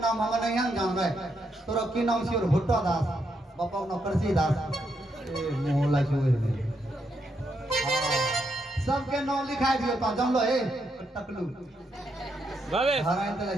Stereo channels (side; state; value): both; normal; correlation 0.79